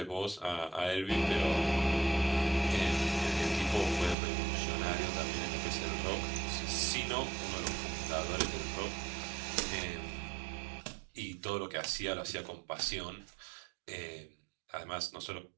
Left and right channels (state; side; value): drops out; left; at 4.2 s